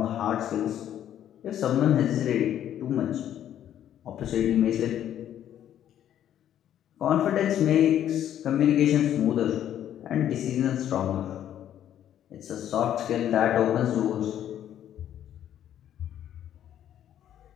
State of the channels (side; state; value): right; quieter; 10.8 dB